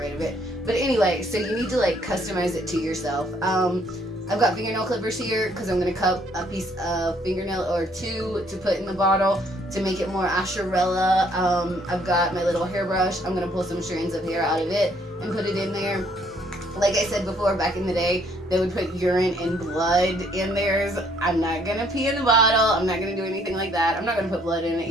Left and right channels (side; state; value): both; normal; correlation 0.65